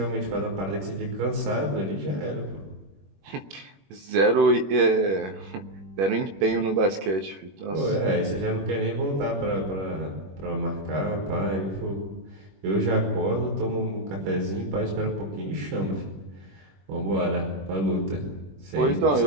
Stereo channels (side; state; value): left; late; 21 ms